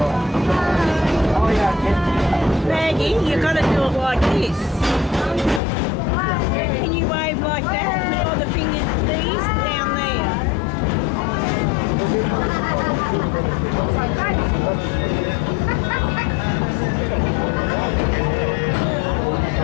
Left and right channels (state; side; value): drops out; right; at 5.6 s